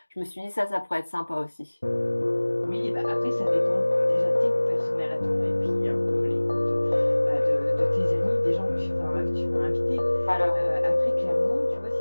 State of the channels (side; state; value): both; inverted; correlation -1.00